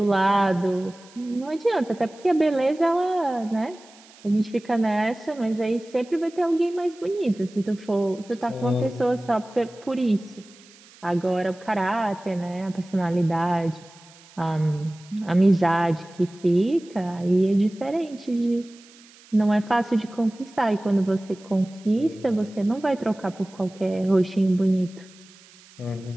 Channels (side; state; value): right; noise; hiss, 25 dB below the sound